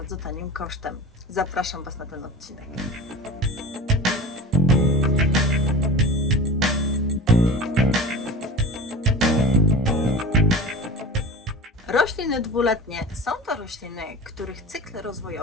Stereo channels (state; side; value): normal; both; correlation 0.33